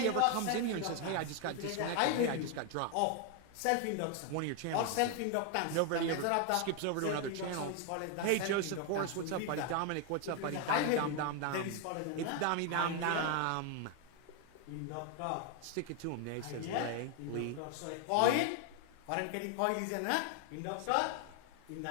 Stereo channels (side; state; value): both; different; correlation 0.01